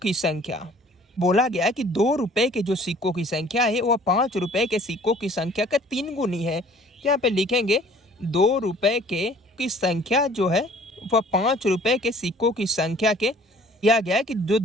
संख्या। बोला गया है कि 2 रुपये के जो सिक्कों की संख्या है वह 5 रुपये के सिक्कों की संख्या का 3 गुनी है। यहाँ पे लिखेंगे 2 रुपये की संख्या जो है वह 5 रुपये के सिक्कों की संख्या के दिया गया है कि जो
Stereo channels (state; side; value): normal; both; correlation 0.53